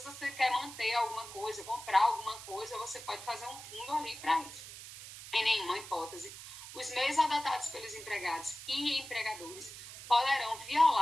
você quer manter alguma coisa, comprar alguma coisa, você pode fazer um fundo ali para isso. Em nenhuma hipótese, os meios adotados pelos empregados e empregadores poderão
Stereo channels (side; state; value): right; noise; hiss, 13 dB below the sound